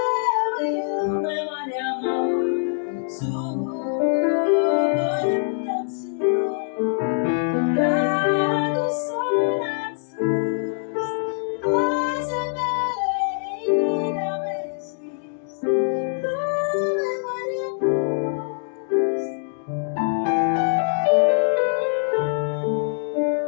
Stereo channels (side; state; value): right; silent; digital silence